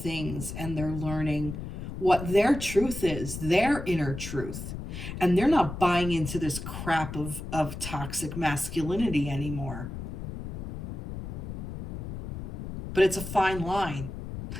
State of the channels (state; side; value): noise; left; rumble, 7 dB below the sound